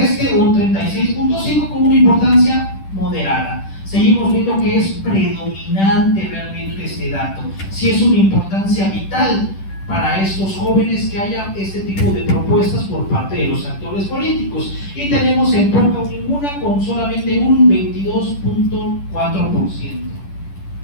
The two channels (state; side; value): late; right; 10 ms